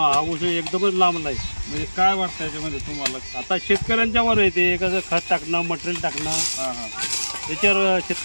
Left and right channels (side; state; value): both; inverted; correlation -1.00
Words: ऊस एकदमच लांबला आहे. म्हणजे काय वाटतं याच्यामध्ये तुम्हाला? आता शेतकऱ्यांच्यावर आहे ते, कसं खत टाकणं, मटेरियल टाकणं, त्याच्यावर